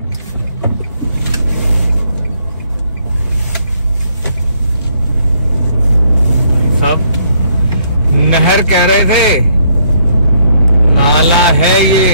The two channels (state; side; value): inverted; both; correlation -0.69